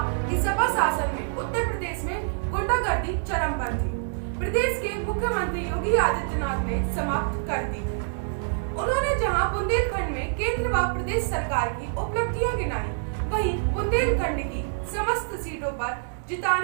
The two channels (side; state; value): left; silent; 61 dB below the other